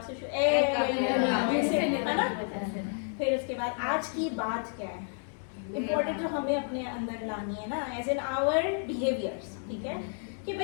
سے شروع؟ پھر اس کے بعد آج کی بات کیا ہے امپورٹنٹ جو ہمیں اپنے اندر لانی ہے نا، ایز ان آور بیہیویئرس. ٹھیک ہے، کہ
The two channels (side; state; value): right; silent; 57 dB below the other